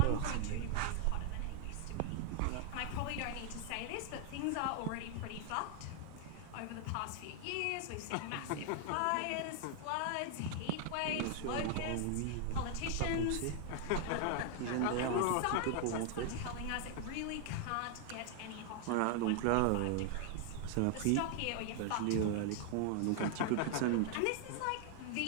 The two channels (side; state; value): both; different; correlation 0.00